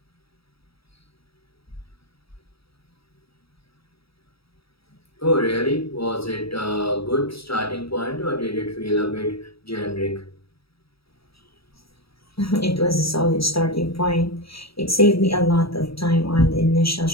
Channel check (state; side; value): late; right; 0.76 ms